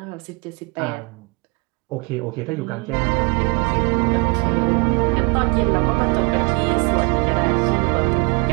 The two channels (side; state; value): left; quieter; 29.8 dB